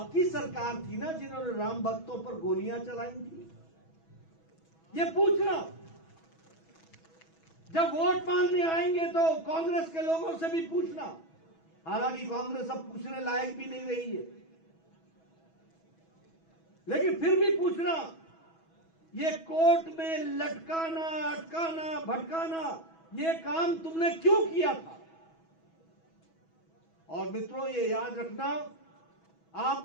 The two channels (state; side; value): late; right; 6.1 ms